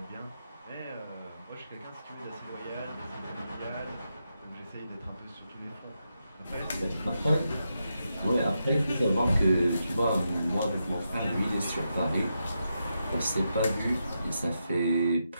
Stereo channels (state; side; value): inverted; both; correlation -0.85